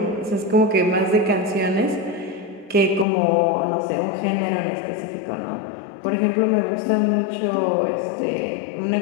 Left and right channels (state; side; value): drops out; right; at 3.1 s